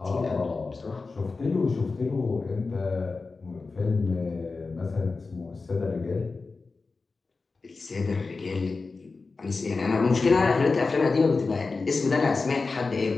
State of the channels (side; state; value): right; quieter; 4.1 dB